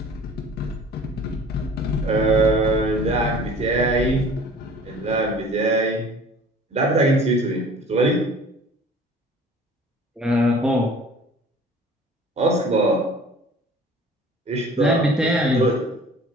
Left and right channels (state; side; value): normal; both; correlation 0.47